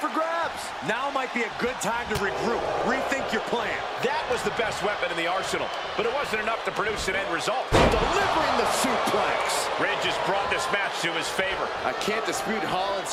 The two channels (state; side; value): identical; both; correlation 1.00